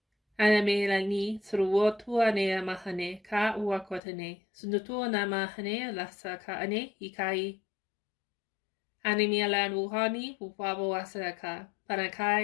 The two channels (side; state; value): right; drops out; at 4.0 s